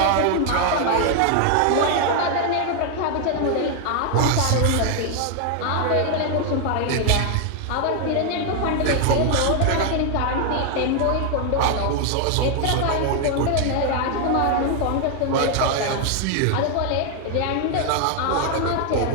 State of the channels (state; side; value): different; both; correlation 0.01